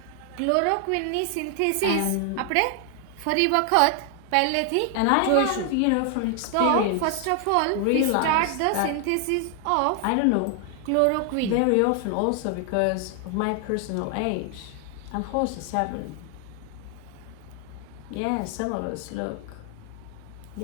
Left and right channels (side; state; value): both; different; correlation 0.00